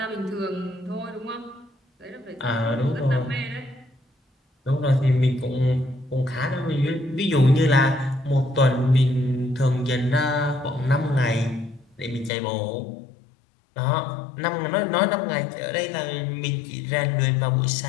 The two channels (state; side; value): drops out; right; at 12.3 s